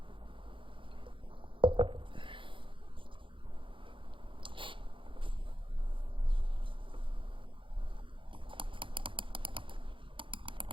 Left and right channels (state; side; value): late; left; 0.25 ms